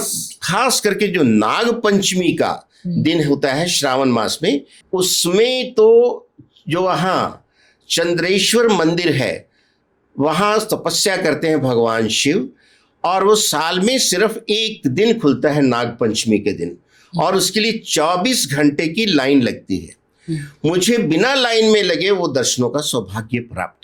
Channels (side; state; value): both; identical; correlation 1.00